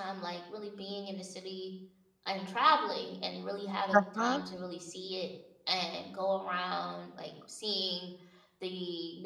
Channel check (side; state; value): both; identical; correlation 1.00